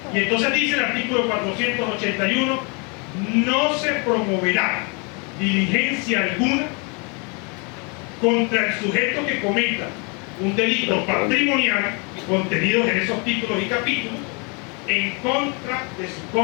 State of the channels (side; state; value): right; quieter; 33.1 dB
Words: Y entonces dice el artículo 481, no se promoverá diligencia alguna contra el sujeto que cometa un delito patrimonial contenido en esos títulos y capítulos en contra de su